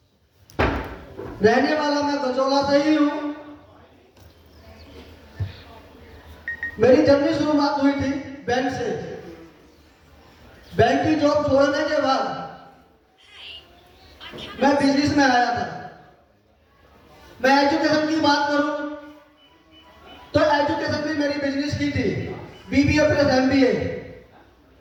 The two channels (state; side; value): identical; both; correlation 1.00